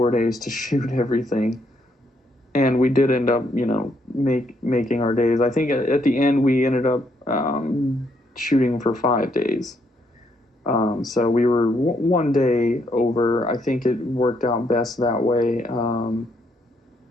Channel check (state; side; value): normal; both; correlation 0.73